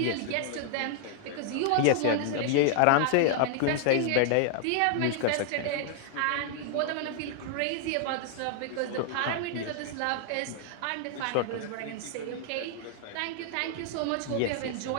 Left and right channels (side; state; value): both; different; correlation 0.00